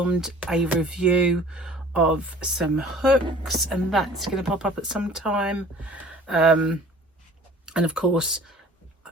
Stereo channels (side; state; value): both; normal; correlation 0.48